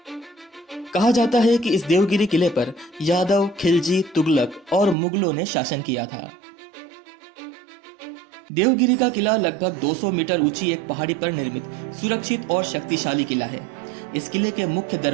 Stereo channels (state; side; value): drops out; left; at 5.0 s